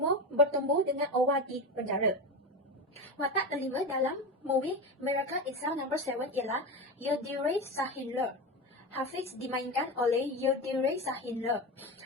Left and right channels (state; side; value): normal; both; correlation 0.20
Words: bertemu dengan Owa di penjara. Watak kelima dalam movie Miracle in Cell No. 7 ialah Yildiray Sahinler. Hafiz dimainkan oleh Yildiray Sahinler.